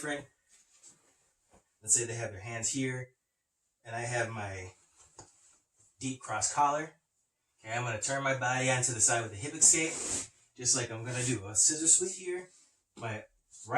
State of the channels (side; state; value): both; identical; correlation 1.00